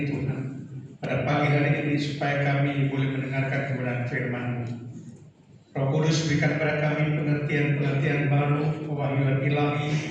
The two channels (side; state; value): both; identical; correlation 1.00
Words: Tuhan, pada pagi hari ini, supaya kami boleh mendengarkan kebenaran firman-Mu. Roh Kudus berikan kepada kami pengertian-pengertian baru, pewahyuan ilahi,